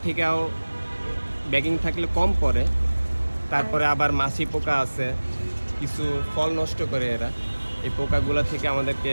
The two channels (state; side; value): inverted; both; correlation -1.00